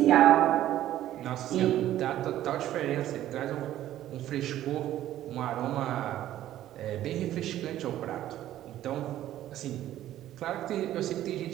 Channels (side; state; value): left; quieter; 13.0 dB